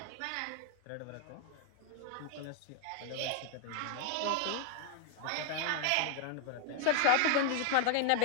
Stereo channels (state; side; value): different; both; correlation 0.00